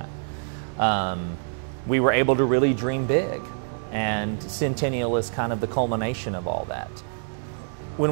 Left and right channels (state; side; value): silent; left; digital silence